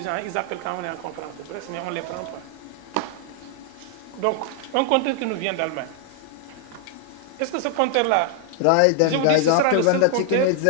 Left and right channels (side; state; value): both; different; correlation 0.00